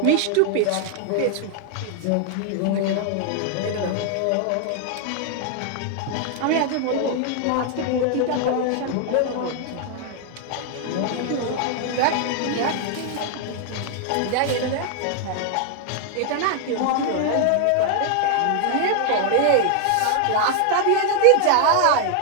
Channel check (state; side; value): different; both; correlation 0.00